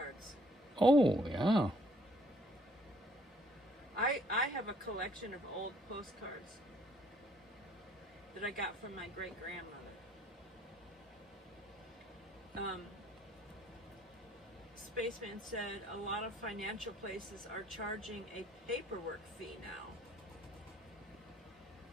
Oh, yeah. I have a collection of old postcards that I got from my great-grandmother. Spaceman said a lot of financial places are charging a paperwork fee now.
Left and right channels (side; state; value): both; normal; correlation 0.62